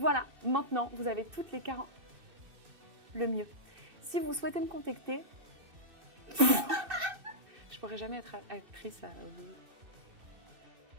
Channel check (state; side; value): late; left; 2.6 ms